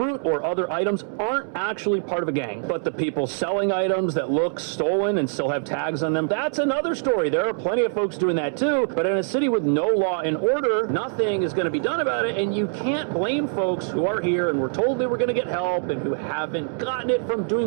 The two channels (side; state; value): left; silent; 63 dB below the other